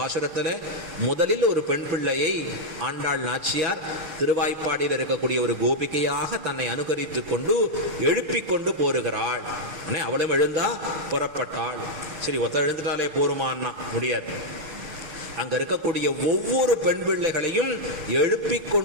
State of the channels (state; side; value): late; left; 6.5 ms